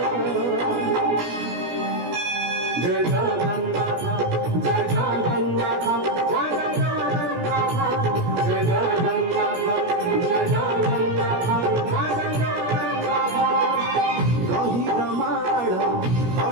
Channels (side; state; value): left; late; 17 ms